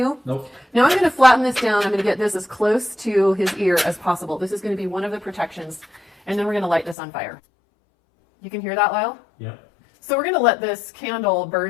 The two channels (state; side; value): drops out; right; at 7.0 s